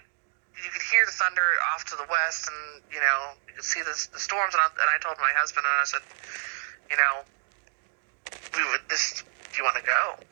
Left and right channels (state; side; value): silent; left; digital silence